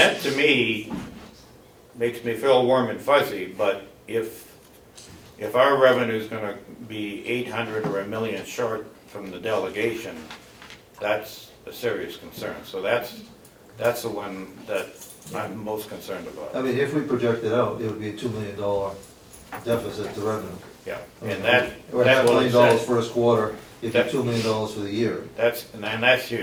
to me makes me feel warm and fuzzy, but if our revenue's gonna be 800 or $1 million short from the delegation, that's a serious concern. So that's the one that I'm most concerned about. If we project it out, it would be a $2 million deficit to revenue. Yeah, and that's Or what $500,000 it says. first quarter, it'd be $2 million for the year. And that's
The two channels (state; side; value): identical; both; correlation 1.00